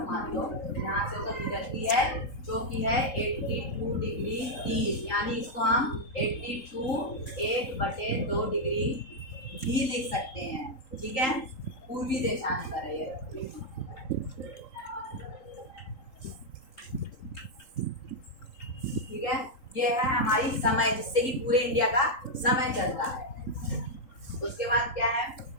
मान लो, यहाँ से होकर गुजरती है, जो कि है 82 डिग्री 30, यानी इसको हम 82 1/2 डिग्री भी लिख सकते हैं। ठीक है, पूर्वी देशांतर है ये। ठीक है, ये है हमारी समय, जिससे कि पूरे इंडिया का समय चलता है। उसके बाद क्या है,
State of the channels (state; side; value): late; right; 3.8 ms